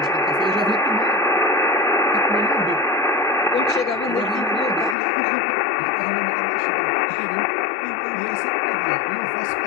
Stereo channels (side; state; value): right; drops out; at 5.0 s